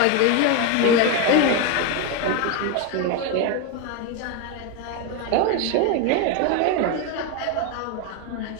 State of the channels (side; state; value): both; different; correlation 0.02